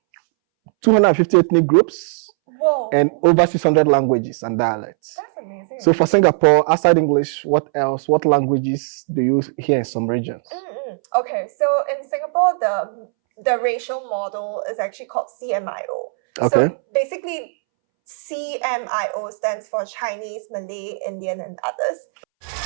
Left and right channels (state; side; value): silent; left; 65 dB below the other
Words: ethnic groups. Whoa. And over 600 languages and dialects. That's amazing. So for Singapore, outside English, what else? What languages do you hear in some regions? Okay, so in Singapore, the racial model is actually called CMIO. Okay. So basically, CMIO stands for Chinese, Malay, Indian, and others.